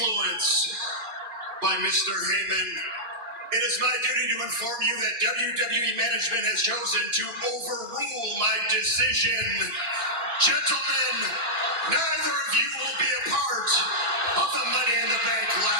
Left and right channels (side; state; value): left; late; 2.9 ms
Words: by Mr. Heyman, it is my duty to inform you that WWE management has chosen to overrule my decision. Gentlemen, neither of you will be a part of the Money in the Bank